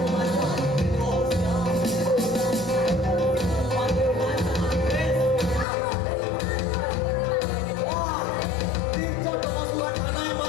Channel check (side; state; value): right; drops out; at 5.7 s